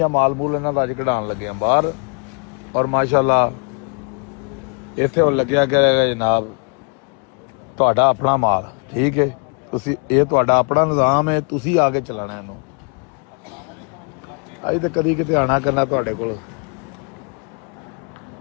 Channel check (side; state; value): right; quieter; 39.3 dB